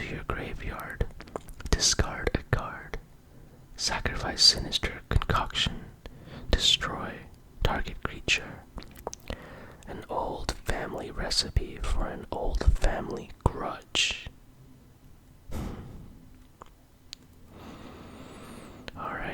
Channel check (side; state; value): both; identical; correlation 1.00